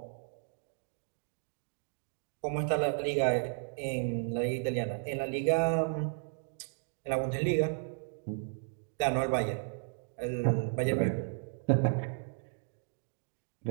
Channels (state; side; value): silent; left; digital silence